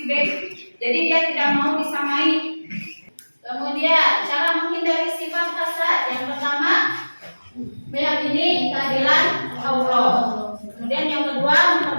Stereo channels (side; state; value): both; inverted; correlation -1.00